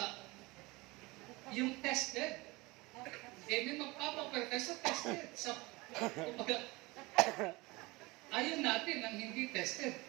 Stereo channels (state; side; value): quieter; left; 23.1 dB